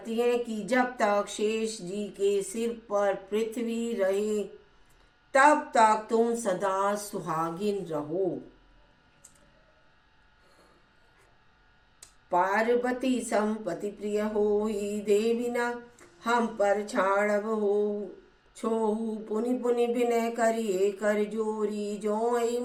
हैं कि जब तक शेष जी के सिर पर पृथ्वी रहे तब तक तुम सदा सुहागिन रहो। पार्वती संपति प्रिय होई, देवी न हम पर छाड़ब हो छोहू, पुनि पुनि विनय करिए कर जोरी, जो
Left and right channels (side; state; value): both; identical; correlation 1.00